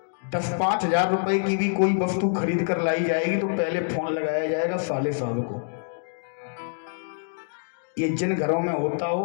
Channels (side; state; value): right; silent; digital silence